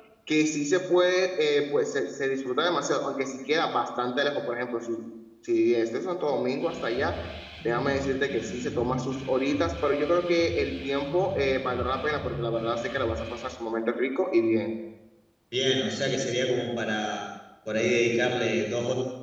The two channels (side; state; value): both; identical; correlation 1.00